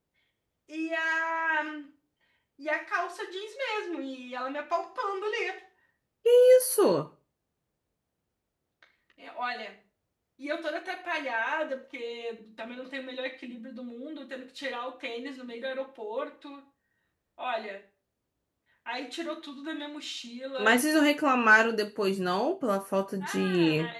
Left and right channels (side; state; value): both; identical; correlation 1.00